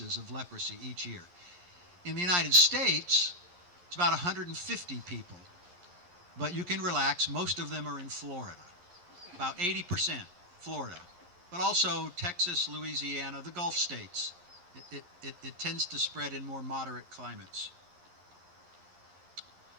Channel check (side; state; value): left; late; 11 ms